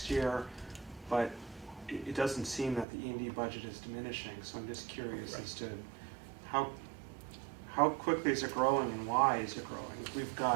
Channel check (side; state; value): left; drops out; at 2.9 s